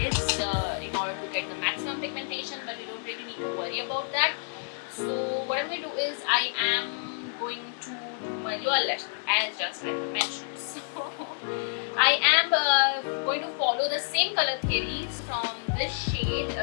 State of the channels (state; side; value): silent; right; digital silence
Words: in order to get the maximum pigmentation. But you don't really need to worry about that. So what I'm going to do is I am going to do my lower lash as just like I mentioned. So I am going to follow the same color theories from this shade